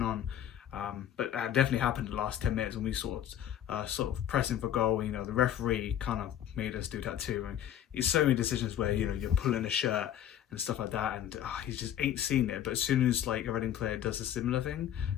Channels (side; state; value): right; quieter; 10.7 dB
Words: on, but that definitely happened in the last 10 minutes when we sort of pressing for goal. The referee kind of made us do that too, and it's so many decisions where you're pulling a shirt and stuff like that, and he just ain't seen it. But as soon as like a Reading player does a similar thing